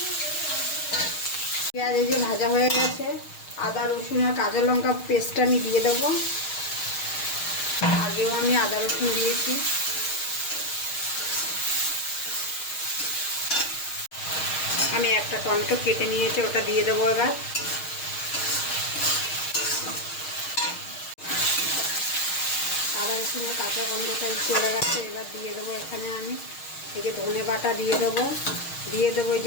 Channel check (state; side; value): late; right; 6.4 ms